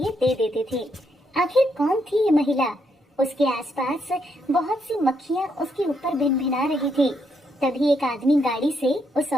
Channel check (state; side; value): normal; both; correlation 0.77